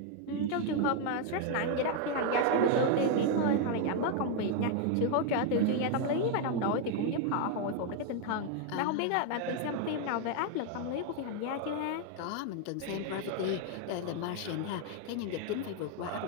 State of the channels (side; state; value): both; different; correlation 0.01